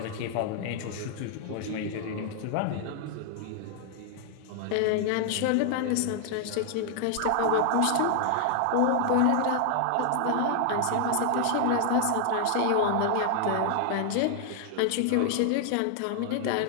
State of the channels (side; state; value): both; different; correlation 0.00